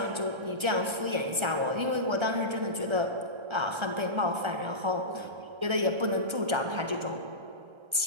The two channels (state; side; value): late; left; 1.3 ms